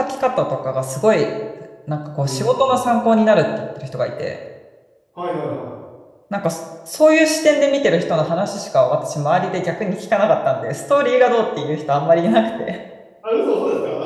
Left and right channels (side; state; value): both; identical; correlation 1.00